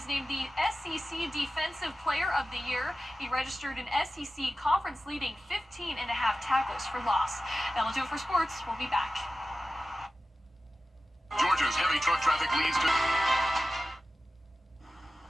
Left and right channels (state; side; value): normal; both; correlation 0.94